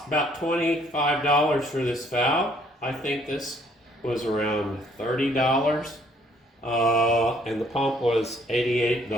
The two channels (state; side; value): normal; both; correlation 0.63